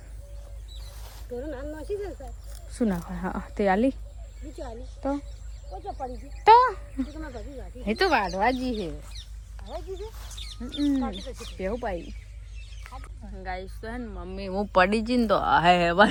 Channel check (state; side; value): identical; both; correlation 1.00